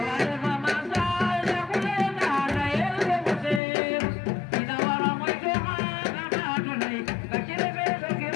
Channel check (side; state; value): right; drops out; at 3.6 s